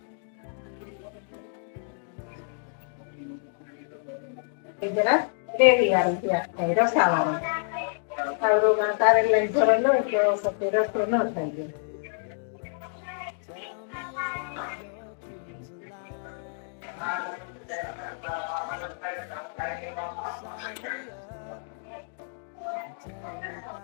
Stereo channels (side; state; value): right; silent; digital silence